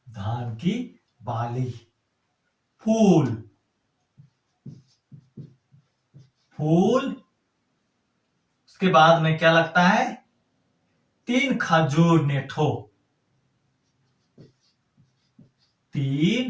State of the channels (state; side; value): identical; both; correlation 1.00